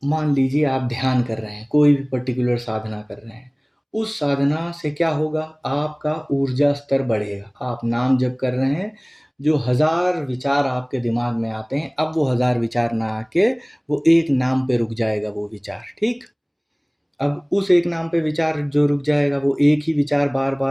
मान लीजिए आप ध्यान कर रहे हैं, कोई भी पर्टिकुलर साधना कर रहे हैं। उस साधना से क्या होगा? आपका ऊर्जा स्तर बढ़ेगा। आप नाम जप कर रहे हैं, जो 1000 विचार आपके दिमाग में आते हैं, अब वो 1000 विचार ना आके वो एक नाम पे रुक जाएगा वो विचार, ठीक? अब उस एक नाम पे विचार जो रुक जाएगा, वो एक ही विचार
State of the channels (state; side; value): identical; both; correlation 1.00